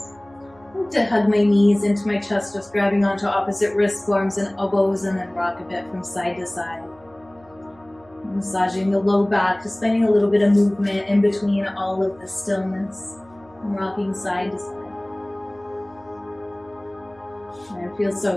I like to hug my knees into my chest, just grabbing onto opposite wrist forms and elbows, and then rock a bit from side to side. Massaging the low back, just finding a little bit of movement in between all of the stillness, and rocking side to side. And it feels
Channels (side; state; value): right; noise; hum, 28 dB below the sound